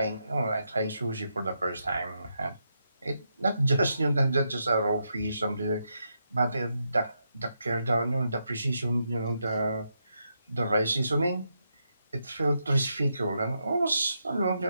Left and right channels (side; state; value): both; inverted; correlation -0.82